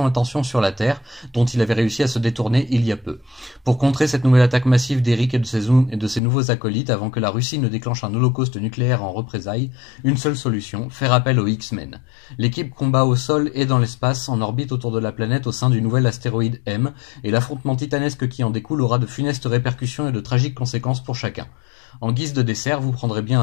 attention sur la Terre, dont il avait réussi à se détourner il y a peu. Pour contrer cette nouvelle attaque massive d'Eric et de ses nouveaux acolytes avant que la Russie ne déclenche un holocauste nucléaire en représailles, une seule solution, faire appel aux X-Men. L'équipe combat au sol et dans l'espace, en orbite autour de la planète au sein du nouvel astéroïde M, et l'affrontement titanesque qui en découle aura de funestes répercussions et de tragiques conséquences pour chacun. En guise de dessert, vous prendrez bien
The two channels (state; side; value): drops out; right; at 6.2 s